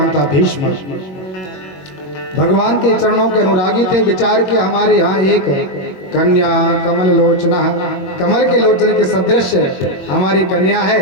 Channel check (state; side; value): late; right; 21 ms